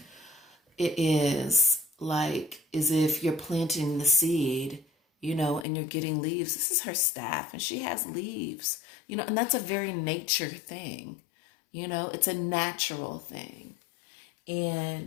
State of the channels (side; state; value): right; drops out; at 5.7 s